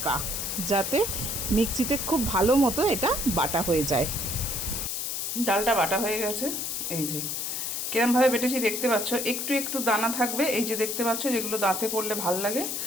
যাতে মিক্সিতে খুব ভালো মতো এটা বাটা হয়ে যায়। ডালটা বাটা হয়ে গেছে, এই যে কিরমভাবে বেটেছি দেখতে পাচ্ছ। একটু একটু দানা থাকবে, এই যে দেখতে পাচ্ছ, যেগুলো দাঁতে পড়লে ভাল লাগে।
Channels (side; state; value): left; noise; hiss, 2 dB below the sound